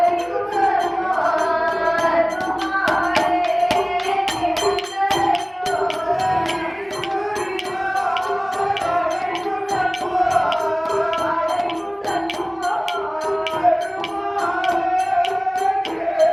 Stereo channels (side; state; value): both; identical; correlation 1.00